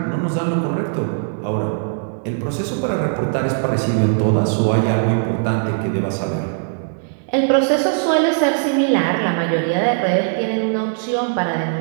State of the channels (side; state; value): left; silent; 66 dB below the other